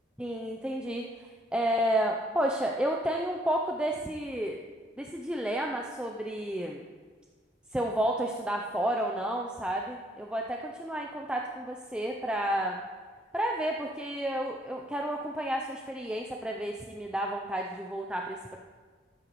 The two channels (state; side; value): normal; both; correlation 0.66